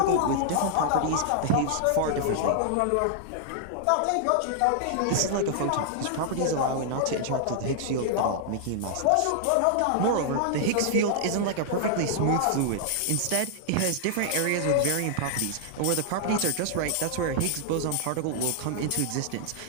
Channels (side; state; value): both; different; correlation -0.01